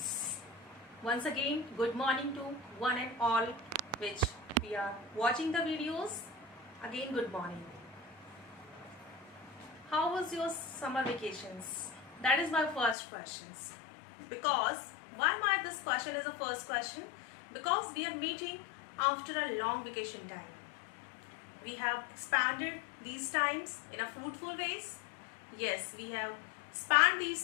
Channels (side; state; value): right; drops out; at 13.0 s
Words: Once again, good morning to one and all which we are watching the videos. Again, good morning. How was your summer vacations? That is my first question. Because why my this question is the first question? Because we are meeting after a long vacation time. We have expanded these times in a fruitful ways. Yes, we have spanned